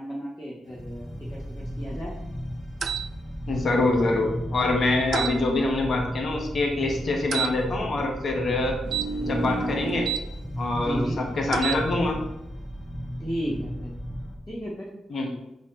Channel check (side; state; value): both; normal; correlation 0.79